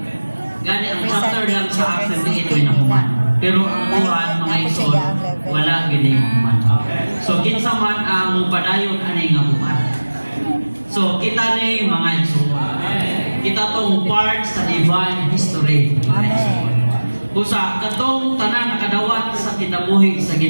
Gani ang chapter lang sa Acts 28 ay nahuman. Pero ang buhat, mga igsoon, wala ginahuman. So, kinsa man ang padayon anay nga buhat. So, kita ni mga igsoon. Kita tong part sa divine history. Mga igsoon. Busa, katong tanan nakadawat sa kinabuhi sa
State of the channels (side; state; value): both; inverted; correlation -1.00